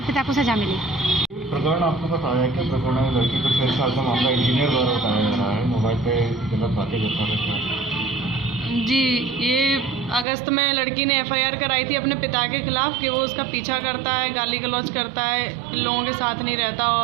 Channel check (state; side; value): drops out; left; at 10.2 s